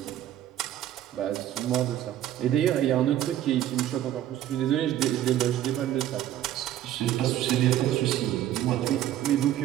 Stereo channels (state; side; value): quieter; left; 12.2 dB